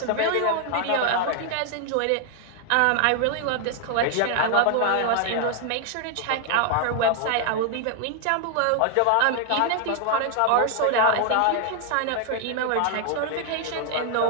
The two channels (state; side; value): different; both; correlation 0.00